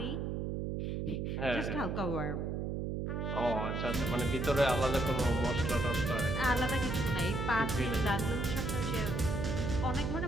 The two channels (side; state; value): right; noise; hum, 1 dB below the sound